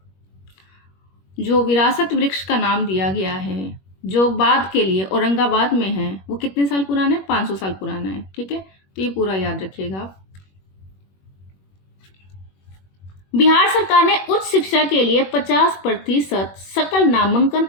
जो विरासत वृक्ष का नाम दिया गया है, जो बाद के लिए औरंगाबाद में है, वो कितने साल पुराना है? 500 साल पुराना है। ठीक है, तो ये पूरा याद रखिएगा आप। बिहार सरकार ने उच्च शिक्षा के लिए 50% सकल नामांकन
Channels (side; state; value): right; late; 21 ms